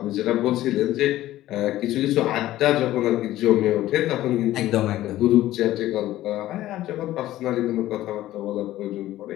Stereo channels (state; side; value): quieter; right; 14.8 dB